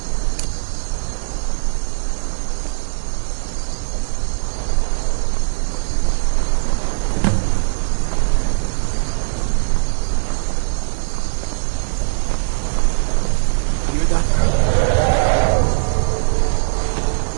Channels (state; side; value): silent; left; 63 dB below the other